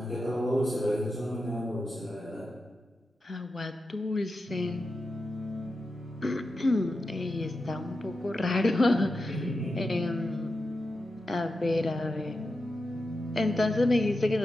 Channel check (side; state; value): both; normal; correlation 0.90